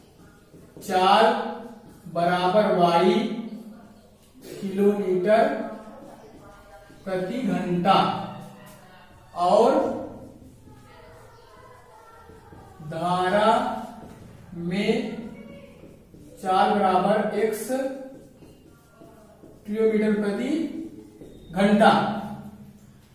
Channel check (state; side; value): identical; both; correlation 1.00